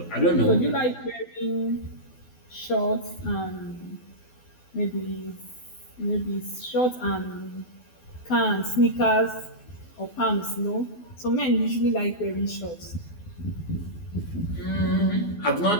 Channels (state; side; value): late; right; 12 ms